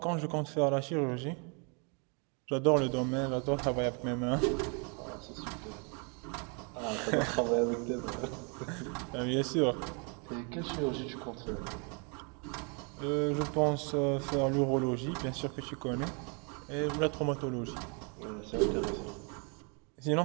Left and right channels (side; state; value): left; quieter; 36.0 dB